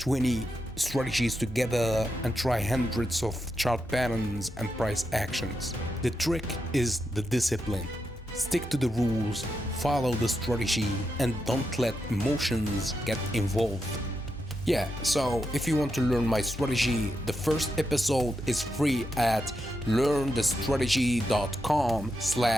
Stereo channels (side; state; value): both; normal; correlation 0.85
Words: strategies together, and try hundreds of chart patterns and price actions. The trick is the discipline. Stick to the rules, follow the strategy, and don't let emotions get involved. Yeah, so if you want to learn my strategy, the first episode is free at